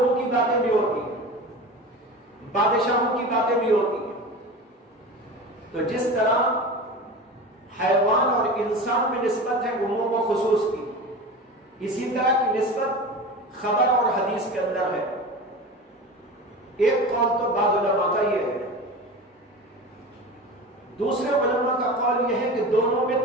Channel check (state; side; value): normal; both; correlation 0.31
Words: کی باتیں بھی ہوتی ہیں، بادشاہوں کی باتیں بھی ہوتی ہیں۔ تو جس طرح حیوان اور انسان میں نسبت ہے عموم و خصوص کی، اسی طرح کی نسبت خبر اور حدیث کے اندر ہے۔ ایک قول تو بعض علماء کا یہ ہے، دوسرے علماء کا قول یہ ہے کہ دونوں میں